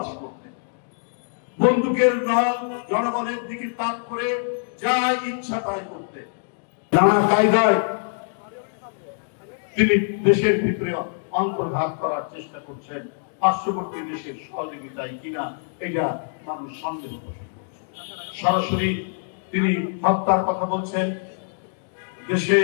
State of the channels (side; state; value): right; silent; digital silence